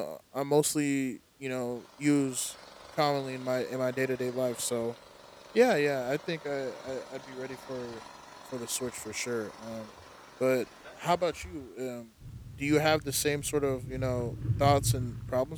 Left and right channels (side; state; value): both; identical; correlation 1.00